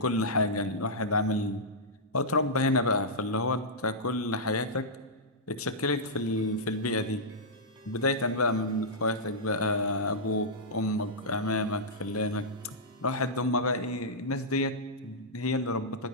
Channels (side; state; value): both; normal; correlation -0.11